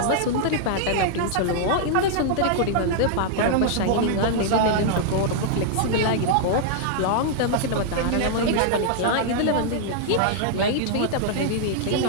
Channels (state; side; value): different; both; correlation -0.01